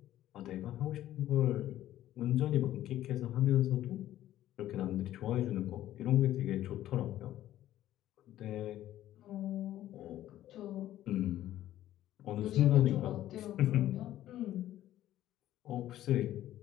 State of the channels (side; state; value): right; quieter; 13.3 dB